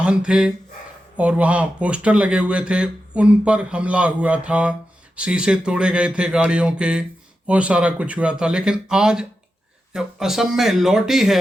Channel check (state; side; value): normal; both; correlation 0.90